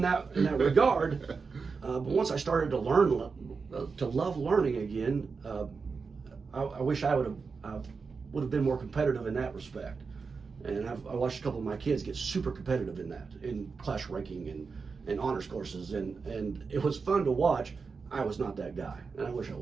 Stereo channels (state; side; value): quieter; left; 4.9 dB